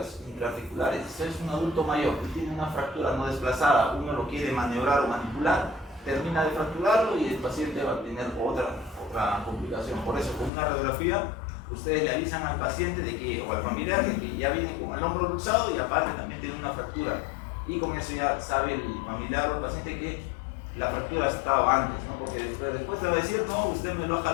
intraarticulares. Si es un adulto mayor que tiene una fractura no desplazada, uno lo quiere maniobrar o manipular, termina de fracturarlo y el paciente va a tener otra complicación. Por eso, con una radiografía, ustedes le avisan al paciente de que, o al familiar de que ya viene con el hombro luxado y aparte también tiene una fractura. Y con eso ya sabe el familiar o el paciente que la fractura ha estado antes, ¿no? Porque después te va a decir, no, usted me lo ha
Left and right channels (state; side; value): drops out; right; at 10.5 s